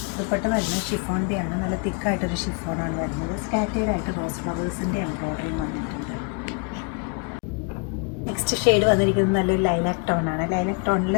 ദുപ്പട്ട വരുന്നത് ഷിഫോണിൻ്റെ ആണ്. നല്ല തിക്കായിട്ടൊരു ഷിഫോണാണ് വരുന്നത്. സ്കാറ്റേർഡ് ആയിട്ട് റോസ് ഫ്ലവേഴ്സിൻ്റെ എംബ്രോയ്ഡറിയും വന്നിട്ടുണ്ട്. നെക്സ്റ്റ് ഷെയ്ഡ് വന്നിരിക്കുന്നത് നല്ലൊരു ലൈലാക്ക് ടോണാണ്. ലൈലാക്ക് ടോണിൽ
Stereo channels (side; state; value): right; quieter; 31.7 dB